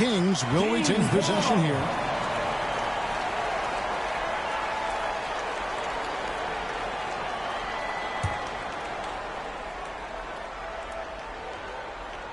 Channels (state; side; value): identical; both; correlation 1.00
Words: will retain possession here.